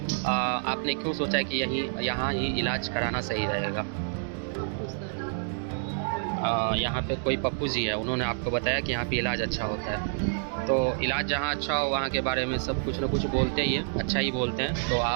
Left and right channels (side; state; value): left; silent; digital silence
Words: आपने क्यों सोचा कि यहाँ ही इलाज कराना सही रहेगा? यहाँ पे कोई पप्पू जी है, उन्होंने आपको बताया कि यहाँ पे इलाज अच्छा होता है। तो इलाज जहाँ अच्छा हो वहाँ के बारे में सब कुछ न कुछ बोलते ही है, अच्छा ही बोलते हैं। तो